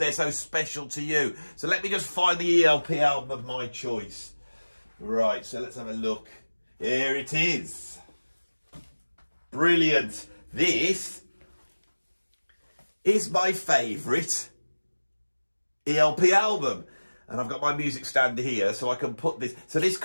so special to you. So let me just find the ELP album of my choice. Right, so let's have a look. Here it is. Brilliant. This is my favourite ELP album. And I've got my music stand here so I can put this. So this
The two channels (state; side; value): inverted; both; correlation -1.00